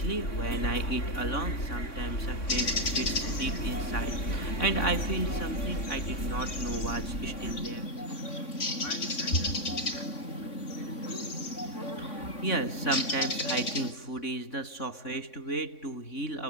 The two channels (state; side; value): late; right; 3.6 ms